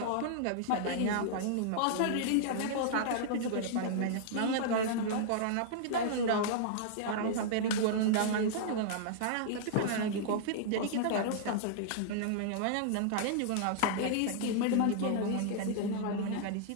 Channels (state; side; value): different; both; correlation -0.01